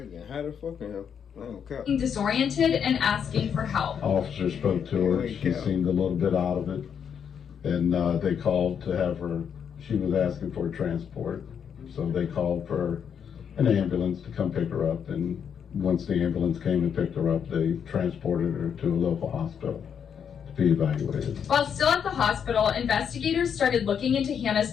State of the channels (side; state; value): right; quieter; 7.7 dB